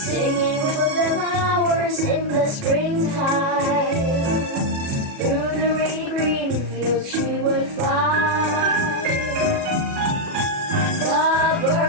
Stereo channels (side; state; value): left; late; 37 ms